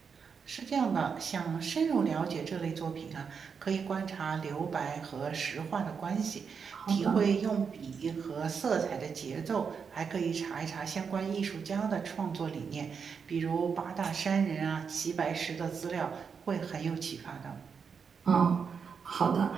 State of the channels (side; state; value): left; quieter; 6.1 dB